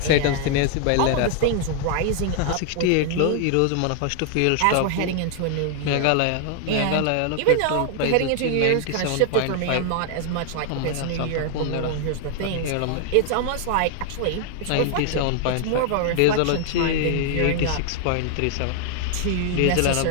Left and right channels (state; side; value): different; both; correlation 0.00